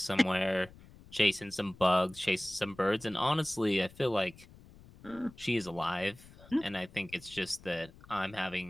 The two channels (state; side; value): noise; left; rumble, 22 dB below the sound